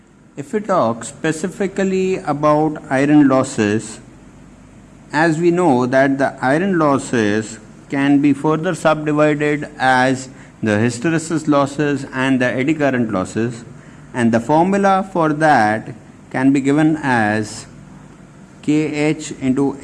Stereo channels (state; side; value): identical; both; correlation 1.00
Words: If we talk specifically about iron losses, as we know that the iron losses can be further subdivided as the hysteresis losses and the eddy current losses, and the formula for that can be given as Kh into